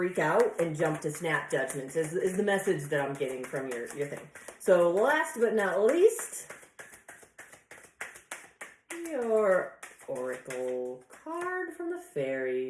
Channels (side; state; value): both; identical; correlation 1.00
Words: out and jump to snap judgments, is the message that I'm getting from your thing. So last but not least, your oracle card from the